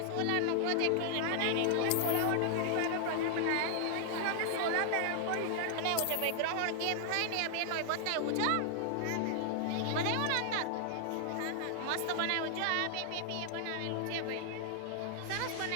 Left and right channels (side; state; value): both; different; correlation 0.00